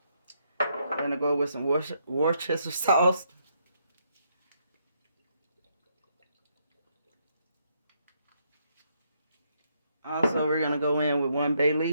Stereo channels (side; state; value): both; inverted; correlation -0.75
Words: I'm gonna go with some Worcestershire sauce. Also, we're gonna go in with 1 bay